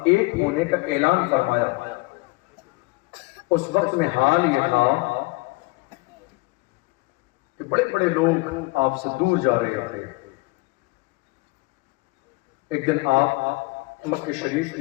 ایک ہونے کا اعلان فرمایا، اس وقت میں حال یہ تھا کہ بڑے بڑے لوگ آپ سے دور جا رہے تھے. ایک دن آپ مکہ شریف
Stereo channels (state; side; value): quieter; right; 24.8 dB